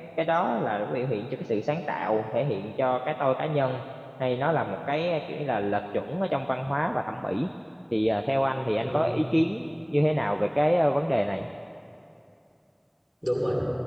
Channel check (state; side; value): identical; both; correlation 1.00